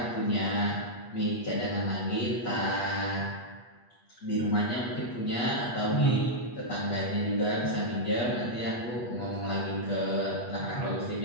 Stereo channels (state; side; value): late; right; 8.3 ms